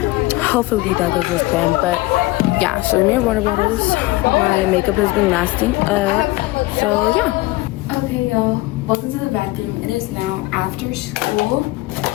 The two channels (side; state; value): right; quieter; 20.4 dB